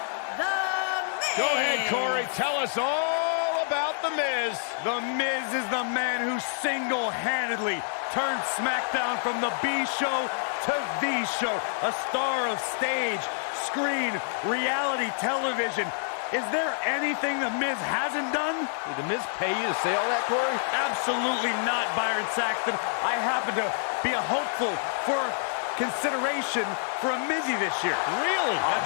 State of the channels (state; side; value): silent; right; digital silence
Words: The Miz. Go ahead, Corey. Tell us all about The Miz. The Miz is the man who single-handedly turned SmackDown from the B show to the show. A star of stage, screen, reality television. Is there anything The Miz hasn't done? Did The Miz pay you to say all that, Corey? Absolutely not, Byron Saxton. I happen to be a hopeful for consideration for a Mizzy this year. Really?